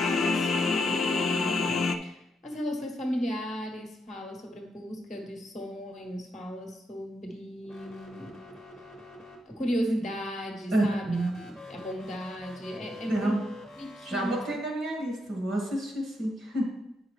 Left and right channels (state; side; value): normal; both; correlation 0.80